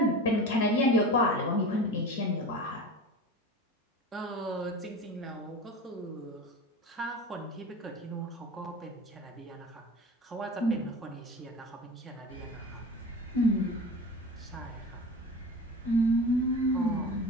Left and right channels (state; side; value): normal; both; correlation 0.32